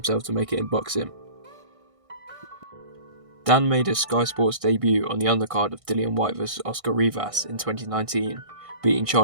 to make it in boxing. Dan made his Sky Sports debut on the undercard of Dillian Whyte vs Oscar Rivas in 2019, beating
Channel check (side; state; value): left; late; 1.6 ms